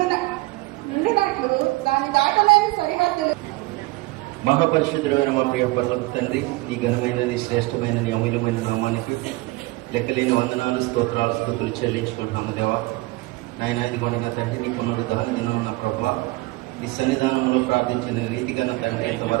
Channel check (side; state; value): left; quieter; 21.4 dB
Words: దాని దాటలేని సరిహద్దులు. మహాపరిశుద్ధుడైన మా ప్రియ పరలోక తండ్రి, నీ ఘనమైనది శ్రేష్టమైనది అమూల్యమైన నామానికి లెక్కలేని వందనాలు, స్తోత్రాలు, స్తుతులు చెల్లించుకుంటున్నాము దేవా. నాయన ఇదిగోండి నా తండ్రి, నీ పునరుద్ధరణ దినం ఉన్న ప్రభువా, ఈ సన్నిధానంలో ప్రార్థించిన రీతిగా నా తండ్రి